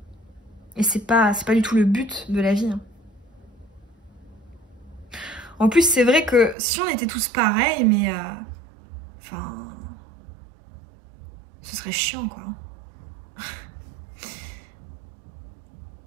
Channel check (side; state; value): left; drops out; at 6.6 s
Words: Et c'est pas du tout le but de la vie. Hein. En plus, c'est vrai que si on était tous pareils, mais... ce serait chiant, quoi.